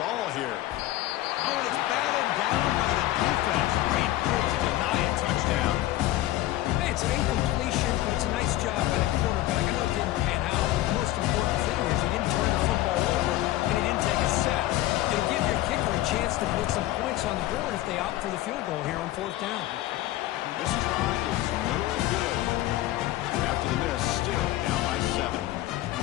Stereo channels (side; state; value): right; quieter; 15.5 dB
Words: all here. Oh, and it's batted down by the defense. Great move to deny a touchdown. Hey, it's an incompletion, but it's a nice job by the quarterback. I know it didn't pan out. The most important thing is he didn't turn the football over, and he didn't take a sack. It'll give your kicker a chance to put some points on the board if they opt for the field goal here on fourth down. This try is no good. After the miss, still down by 7.